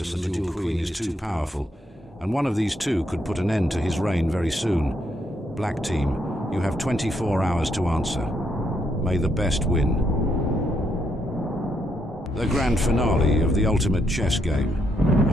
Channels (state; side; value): normal; both; correlation 0.76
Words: and the Dual Queen is too powerful, and one of these two could put an end to his reign very soon. Black team, you have 24 hours to answer. May the best win. The grand finale of the ultimate chess game.